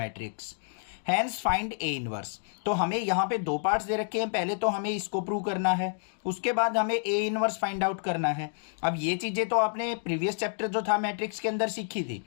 hence find A inverse. तो हमें यहाँ पे दो पार्ट्स दे रखे हैं। पहले तो हमें इसको प्रूव करना है, उसके बाद हमें ए इनवर्स फाइंड आउट करना है। अब ये चीजें तो आपने प्रीवियस चैप्टर जो था मैट्रिक्स के अंदर सीखी थी,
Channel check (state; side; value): silent; right; digital silence